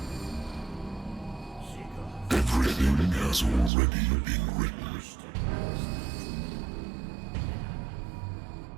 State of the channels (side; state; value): left; drops out; at 3.7 s